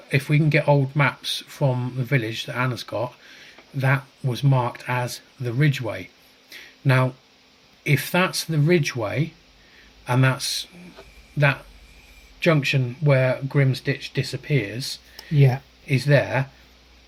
we can get old maps from the village that Anna's got, that was marked as the Ridgeway. Now, if that's the Ridgeway, and that's that junction where Grimsditch disappears, is there,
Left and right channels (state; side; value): identical; both; correlation 1.00